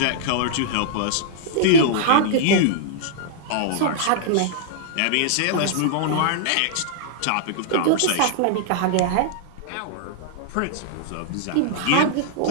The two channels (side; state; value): both; different; correlation -0.02